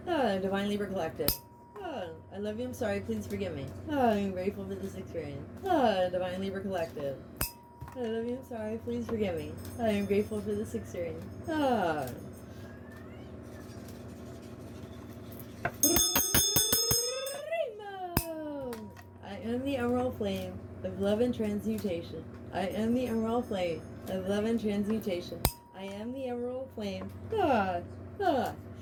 Ah, Divine Libra Collective. Ah, I love you. I'm sorry. Please forgive me. Ah, I am grateful for this experience. Ah, Divine Libra Collective. I love you. I'm sorry. Please forgive me. I am grateful for this experience. Ah. I am the emerald flame of love and transmutation. I am the emerald flame of love and transmutation. I am the emerald flame of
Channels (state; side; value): identical; both; correlation 1.00